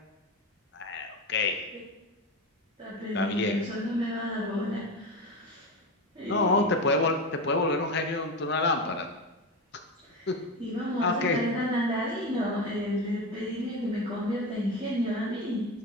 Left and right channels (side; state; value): both; normal; correlation 0.21